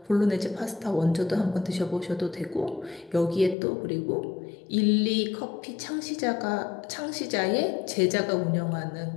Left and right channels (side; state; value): right; drops out; at 3.6 s